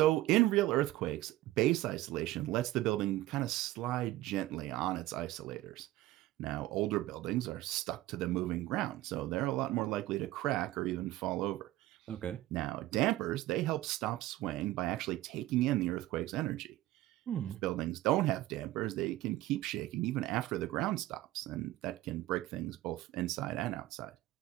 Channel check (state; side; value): quieter; left; 16.2 dB